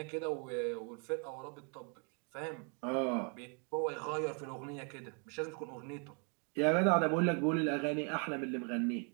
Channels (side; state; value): left; quieter; 38.5 dB